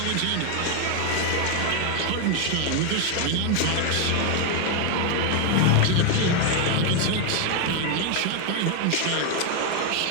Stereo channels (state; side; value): different; both; correlation 0.01